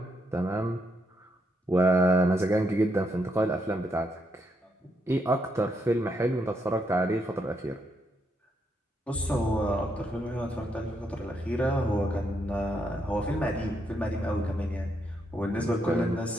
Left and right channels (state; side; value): normal; both; correlation 0.78